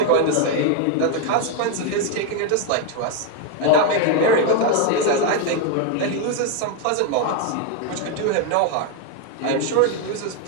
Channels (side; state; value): both; different; correlation 0.01